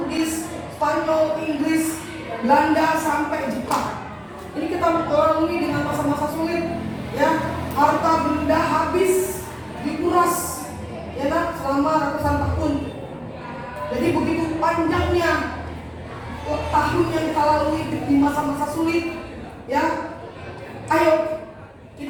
Spanyol, Inggris, Belanda sampai Jepang. Ini kita lalui dengan masa-masa sulit ya. Harta benda habis dikuras ya kan selama ratusan tahun. Jadi begitu panjangnya tahun yang kita lalui di masa-masa sulit ya. Ayo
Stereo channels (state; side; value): identical; both; correlation 1.00